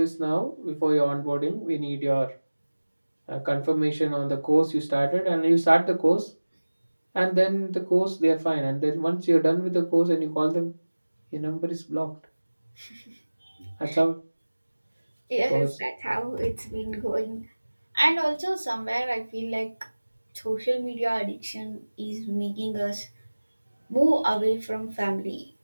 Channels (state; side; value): inverted; both; correlation -1.00